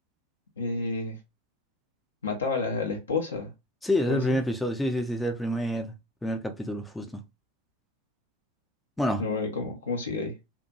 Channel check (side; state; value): both; normal; correlation 0.39